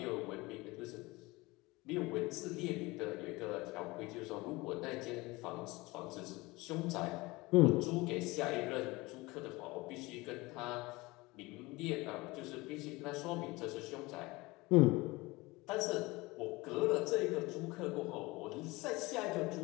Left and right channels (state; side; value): quieter; right; 22.2 dB